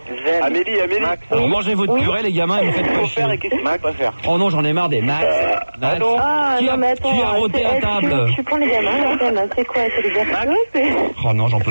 Amélie. Alors mangez votre purée, les gamins, et vous faites pas chier. Max va faire. Oh non, j'en ai marre des Max. Ah, non, mais attends, qui a roté à table? Tu prends les gamins, c'est quoi? C'est les versos? Oh non, j'en peux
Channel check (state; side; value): inverted; both; correlation -1.00